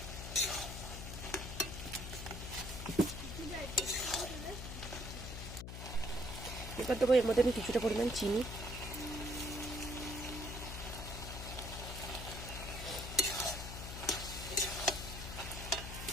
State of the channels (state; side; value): noise; left; hum, 7 dB below the sound